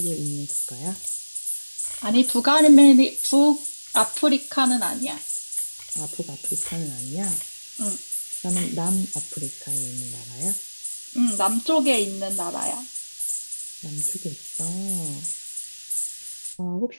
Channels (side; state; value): both; inverted; correlation -1.00